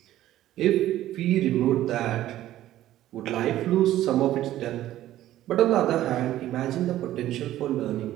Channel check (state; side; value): quieter; left; 13.7 dB